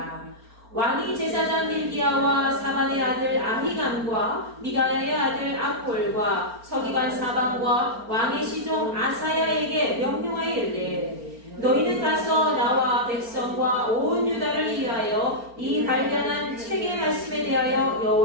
왕이 제사장 힐기야와 사반의 아들 아히감과 미가야의 아들 악볼과 서기관 사반과 왕의 시종 아사야에게 명령하여 이르되 너희는 가서 나와 백성과 온 유다를 위하여 이 발견한 책의 말씀에 대하여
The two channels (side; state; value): left; late; 4.4 ms